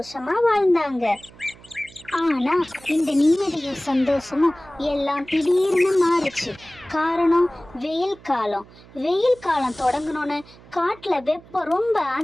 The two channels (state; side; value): noise; right; hum, 23 dB below the sound